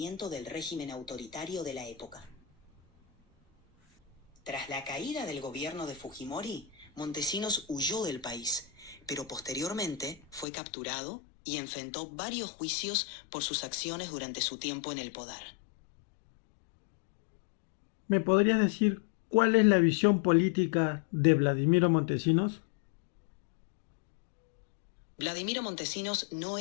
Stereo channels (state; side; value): drops out; right; at 10.5 s